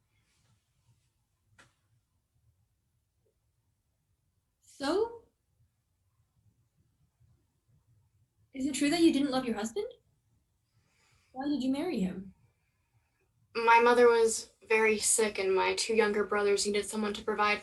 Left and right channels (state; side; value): identical; both; correlation 1.00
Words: So? Is it true that you didn't love your husband? Why did you marry him? My mother was very sick, and my two younger brothers needed someone to provide